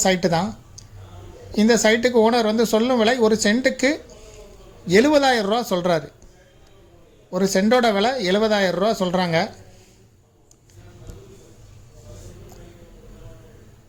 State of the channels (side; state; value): both; identical; correlation 1.00